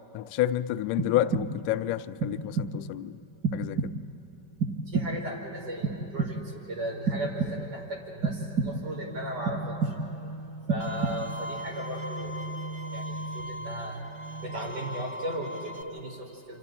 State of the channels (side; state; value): left; late; 5.2 ms